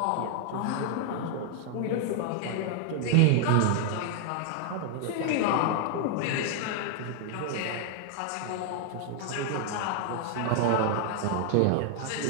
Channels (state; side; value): different; both; correlation 0.00